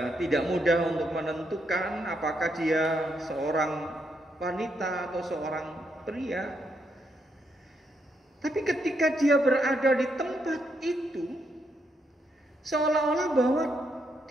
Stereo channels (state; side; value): normal; both; correlation 0.78